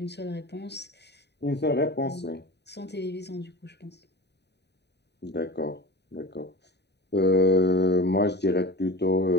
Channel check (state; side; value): late; right; 0.49 ms